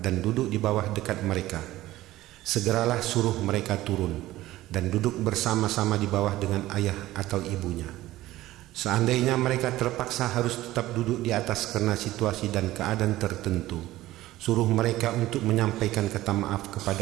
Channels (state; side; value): quieter; left; 16.1 dB